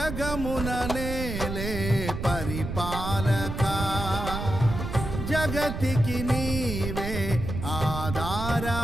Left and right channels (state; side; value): noise; right; rumble, 5 dB below the sound